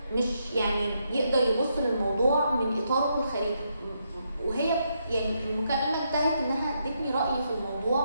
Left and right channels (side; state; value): both; inverted; correlation -0.79